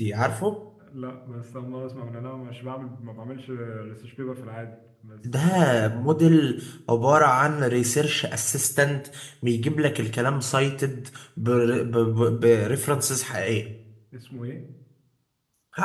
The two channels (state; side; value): identical; both; correlation 1.00